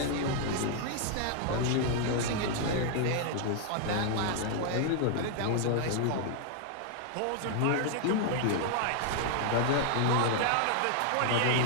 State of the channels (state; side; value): different; both; correlation 0.00